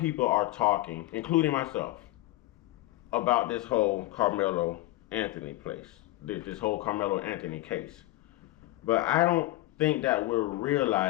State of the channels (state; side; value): quieter; right; 17.4 dB